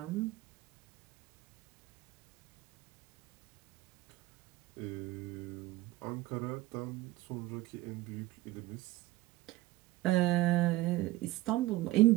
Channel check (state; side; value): quieter; left; 18.0 dB